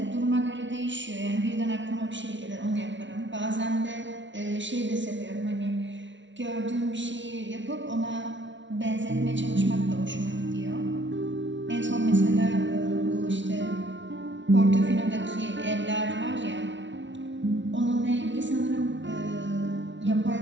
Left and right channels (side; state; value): left; late; 0.55 ms